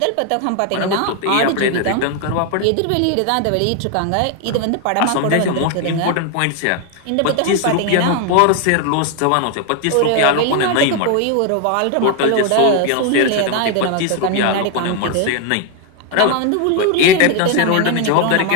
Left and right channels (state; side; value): different; both; correlation 0.01